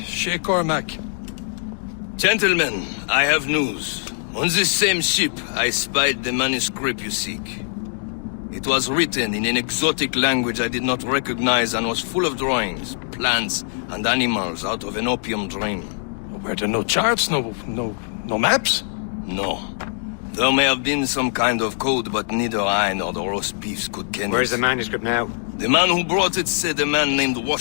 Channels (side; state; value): right; silent; digital silence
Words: Shay Cormac. Gentlemen, I have news. On this same ship, I spied the manuscript you seek. It was written in an exotic language I did not recognize and was full of drawings, plants, and animals out of an opium dream. Were there no charts, no maps? No. There may have been some kind of code, but neither I nor the roast beefs could ken Where's it. the manuscript now? The man who brought it said a man named